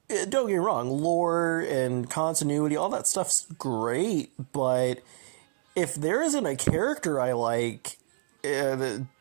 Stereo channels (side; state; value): left; silent; digital silence